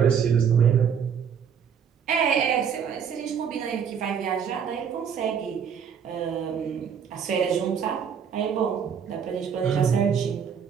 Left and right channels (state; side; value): quieter; left; 7.4 dB